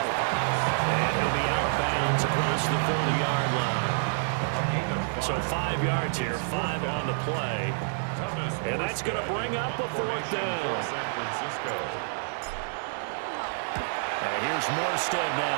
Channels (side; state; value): left; silent; digital silence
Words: And he'll be out of bounds across the 30-yard line. So 5 yards here, 5 on the play. And that's going to bring up a 4th down. And here's Morstead